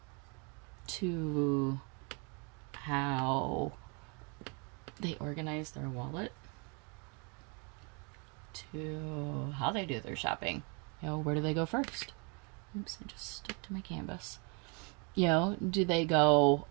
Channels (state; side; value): quieter; left; 33.6 dB